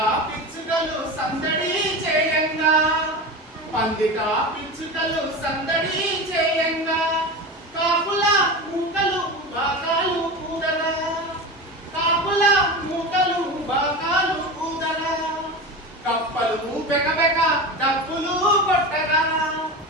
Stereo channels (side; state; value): both; normal; correlation 0.26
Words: పిచ్చుకలు సందడి చేయంగా పందిట పిచ్చుకలు సందడి చేయంగా కాపుల మూకలు బాకాలు ఊదరా కాపుల మూకలు బాకాలు ఊదరా కప్పలు బెకబెక డప్పులు కొట్టగా